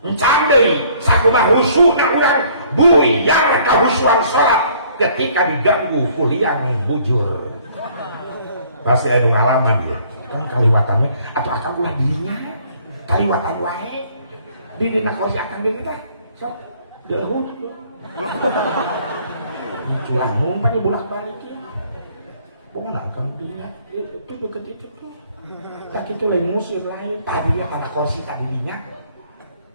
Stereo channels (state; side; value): inverted; both; correlation -0.60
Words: encandei sakumaha khusyukna urang buyar kahusyuan sholat ketika diganggu ku liang bujur pasti anu ngalaman ya kan kaliwatannya atau akan ulah dirinya kaliwatan wae di dina kursi akan diri teh sok dahut culangung pan bolak-balik ya pokoknya akan dirinya itu deket itu tak itu lain musir lain tadinya pada kursi tadinya